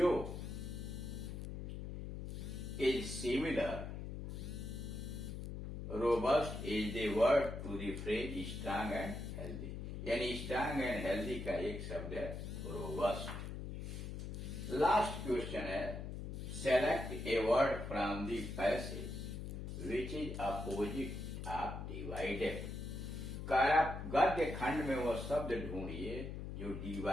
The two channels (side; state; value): left; noise; hum, 6 dB below the sound